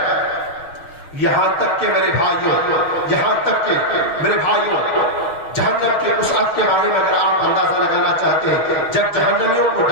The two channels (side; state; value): right; late; 6.6 ms